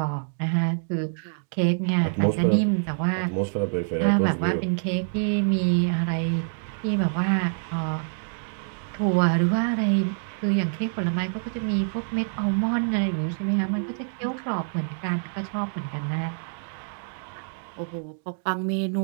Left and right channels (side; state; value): left; silent; digital silence